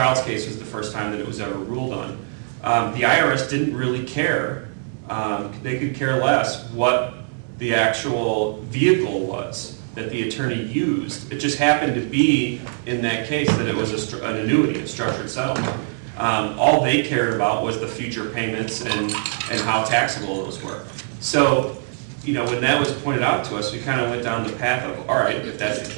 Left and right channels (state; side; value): silent; left; digital silence